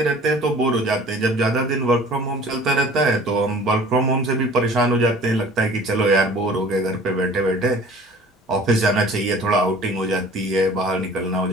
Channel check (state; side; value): normal; both; correlation 0.47